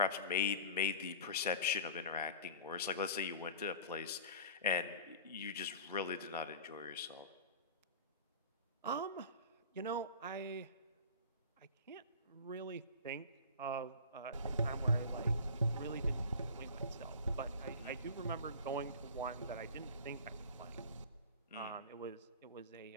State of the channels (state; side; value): inverted; both; correlation -0.37